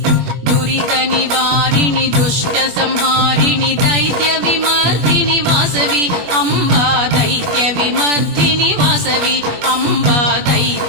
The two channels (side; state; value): left; late; 21 ms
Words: दुरित निवारिणि दुष्ट संहारिणि दैत्य विमर्दिनि वासवि अम्बा दैत्य विमर्दिनि वासवि अम्बा